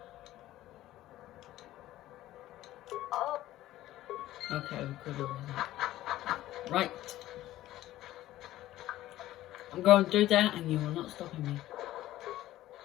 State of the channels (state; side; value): quieter; right; 14.8 dB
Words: Oh. Okay, we're good over that. Right. I'm going through that and you are not stopping me.